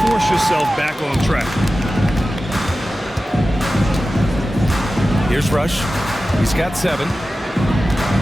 force yourself back on track. Here's Rush. He's got 7.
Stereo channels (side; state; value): both; normal; correlation 0.94